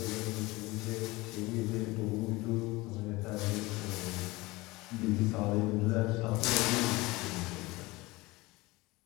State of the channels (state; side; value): quieter; right; 21.6 dB